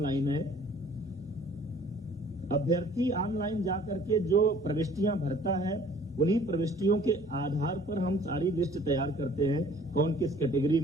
है। अभ्यर्थी ऑनलाइन जाकर के जो प्रविष्टियां भरता है उन्हीं प्रविष्टियों के आधार पर हम सारी लिस्ट तैयार करते हैं, कौन किस कैटेगरी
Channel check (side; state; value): both; normal; correlation 0.54